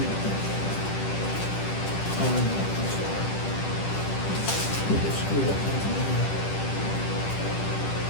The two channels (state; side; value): late; right; 10 ms